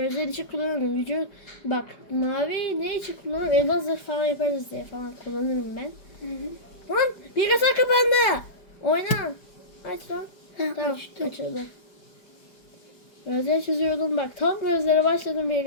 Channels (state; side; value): late; right; 4.9 ms